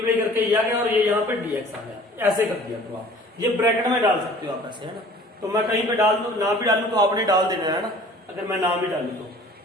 करके ये आ गया और ये यहाँ पे dx आ गया, ऐसे कर दिया। तो आप ये ब्रैकेट में डाल सकते हो आप ऐसे, है ना। तो मैं कहीं पे डाल दूं ना भी डालू तो आपने डाल देना है ना, अगर मैं ना भी डालू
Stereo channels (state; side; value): normal; both; correlation 0.49